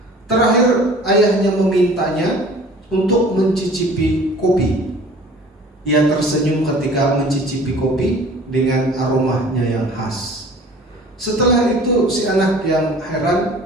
Terakhir ayahnya memintanya untuk mencicipi kopi. Ia tersenyum ketika mencicipi kopi dengan aromanya yang khas. Setelah itu si anak yang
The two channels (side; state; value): both; normal; correlation 0.47